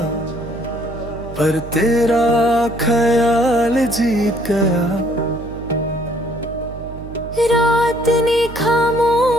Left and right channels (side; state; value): right; noise; hum, 13 dB below the sound